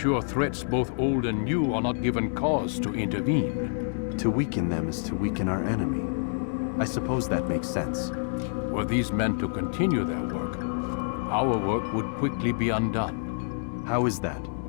threats both old and new are not given cause to intervene. To weaken them is to weaken our enemy. I suppose that makes sense. Were these men to continue their work, our work would quickly be undone. How is that?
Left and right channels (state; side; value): silent; right; digital silence